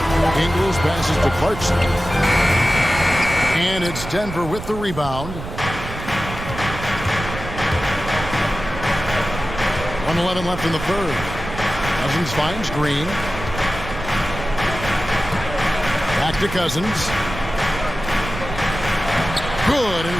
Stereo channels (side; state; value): right; noise; rumble, 9 dB below the sound